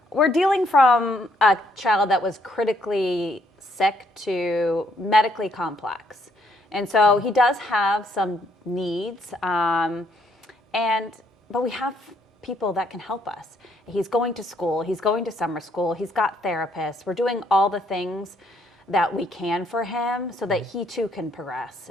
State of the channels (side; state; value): both; normal; correlation 0.70